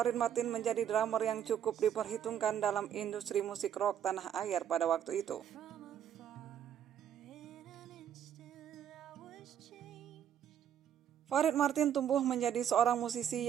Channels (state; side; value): quieter; left; 9.4 dB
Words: Martin menjadi drummer yang cukup diperhitungkan dalam industri musik rock tanah air pada waktu itu. Farid Martin tumbuh menjadi seorang musisi